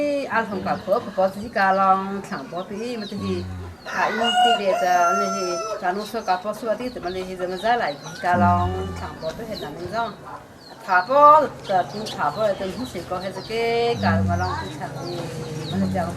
ăn không cả phở có gì cả lòng chẳng có tí mà thì anh đi để cho nên thì cả nó số cả phở số tí thì mình thì giờ ra lại cả lòng chẳng có cái hiện là mình rong thả phở thì thả phở thì không chỉ có hết cái cả mà lòng thì chẳng thì mình chẳng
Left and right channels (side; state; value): both; identical; correlation 1.00